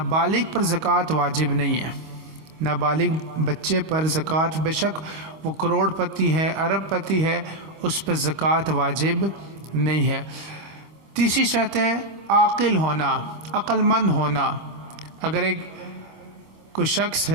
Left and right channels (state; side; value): late; left; 25 ms